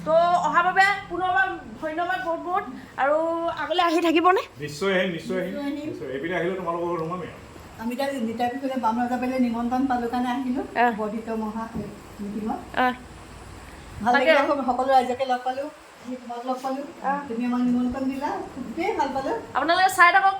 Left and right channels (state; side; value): identical; both; correlation 1.00